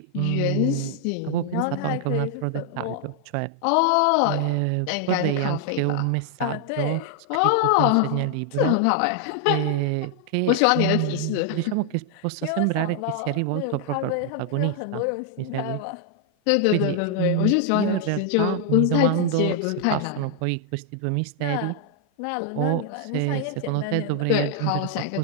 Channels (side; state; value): both; different; correlation 0.00